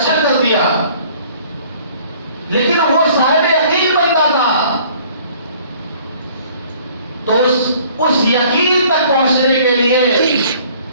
کر دیا. لیکن وہ صاحب یقین بنتا تھا، تو اس یقین تک پہنچنے کے لیے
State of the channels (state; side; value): inverted; both; correlation -0.55